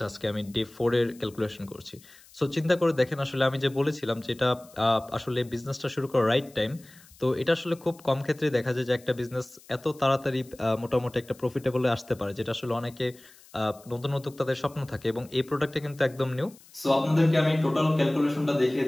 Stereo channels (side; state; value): left; noise; hiss, 25 dB below the sound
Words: আজকে আমি ডে 4 এর ক্যালকুলেশন করছি। সো চিন্তা করে দেখেন, আসলে আমি যে বলেছিলাম যে এটা আসলে বিজনেসটা শুরু করার রাইট টাইম। তো এটা আসলে খুব কম ক্ষেত্রে দেখা যায় যে একটা বিজনেস এত তাড়াতাড়ি মোটামুটি একটা প্রফিটেবলে আসতে পারে, যেটা আসলে অনেকে নতুন উদ্যোক্তাদের স্বপ্ন থাকে এবং এই প্রোডাক্টটা কিন্তু একদম নিউ। সো আপনাদেরকে আমি টোটাল ক্যালকুলেশনটা দেখিয়ে